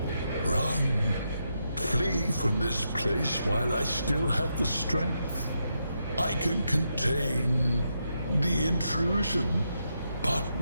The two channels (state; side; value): inverted; both; correlation -0.83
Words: Run. Flee from this place while I still have the strength. I can contain the intrusion, but